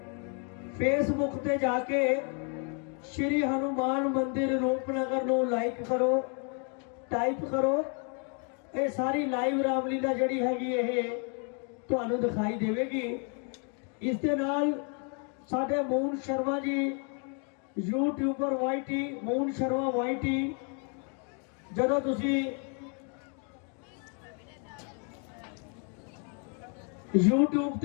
ਫੇਸਬੁੱਕ ਤੇ ਜਾ ਕੇ ਸ਼੍ਰੀ ਹਨੂਮਾਨ ਮੰਦਿਰ ਰੂਪਨਗਰ ਨੂੰ ਲਾਈਕ ਕਰੋ, ਟਾਈਪ ਕਰੋ। ਇਹ ਸਾਰੀ ਲਾਈਵ ਰਾਮਲੀਲਾ ਜਿਹੜੀ ਹੈਗੀ ਇਹ ਤੁਹਾਨੂੰ ਦਿਖਾਈ ਦੇਵੇਗੀ। ਇਸ ਦੇ ਨਾਲ ਸਾਡੇ moon Sharma ji YouTuber ਵਾਈਟੀ, moon Sharma ਵਾਈਟੀ, ਜਦੋਂ ਤੁਸੀਂ YouTube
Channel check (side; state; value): right; quieter; 39.2 dB